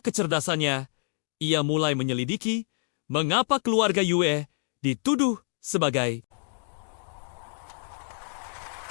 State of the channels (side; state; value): right; silent; digital silence